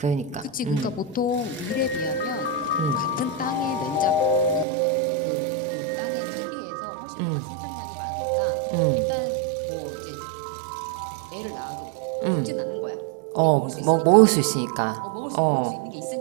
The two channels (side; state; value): left; drops out; at 4.7 s